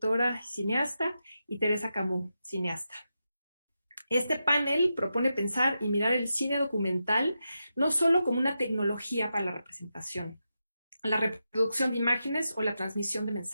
cineasta, y Teresa Camus, cineasta. Este panel propone pensar y mirar el cine documental no solo como una tecnología para la representación, la reproducción de imágenes o la transmisión de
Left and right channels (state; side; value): inverted; both; correlation -0.88